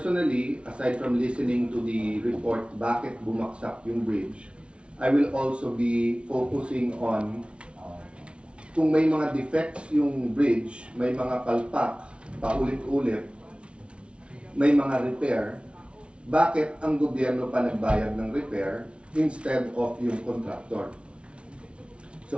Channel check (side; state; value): left; late; 0.059 ms